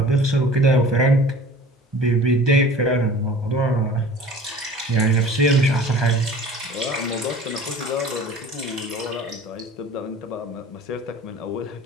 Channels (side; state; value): both; normal; correlation 0.44